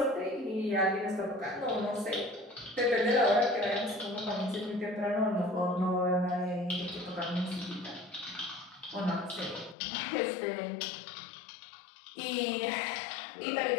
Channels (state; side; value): drops out; right; at 9.8 s